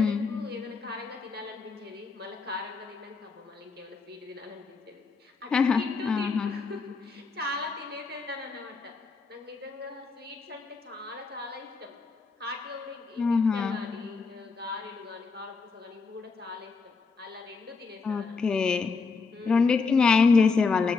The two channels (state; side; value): quieter; right; 4.6 dB